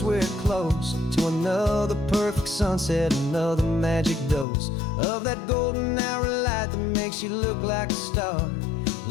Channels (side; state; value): right; drops out; at 4.5 s